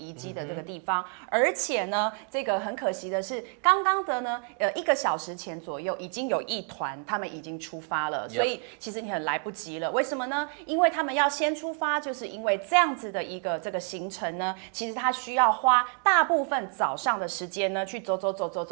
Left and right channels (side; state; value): left; quieter; 39.7 dB